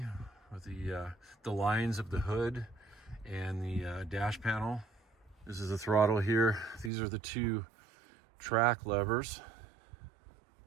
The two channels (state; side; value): drops out; left; at 6.9 s